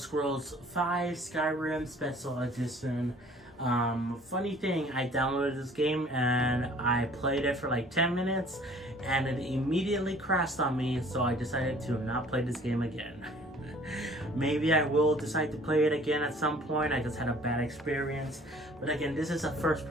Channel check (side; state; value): both; normal; correlation 0.53